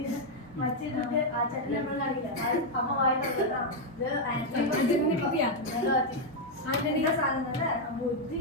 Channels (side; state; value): both; normal; correlation 0.00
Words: മറ്റേ ആ ചട്ടി നമ്മൾ കാണില്ല, അമ്മ വായിട്ടാ സാധനം ബുദ്ധി